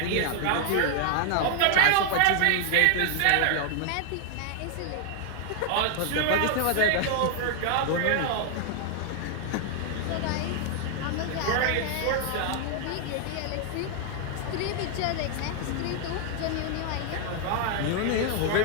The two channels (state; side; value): different; both; correlation 0.00